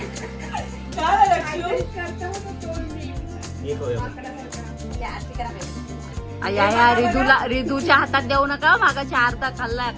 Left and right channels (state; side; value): identical; both; correlation 1.00